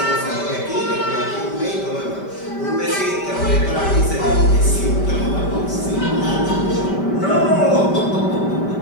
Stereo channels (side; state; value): right; late; 5.1 ms